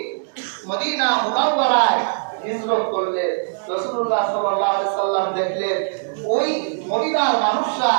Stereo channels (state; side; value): silent; left; digital silence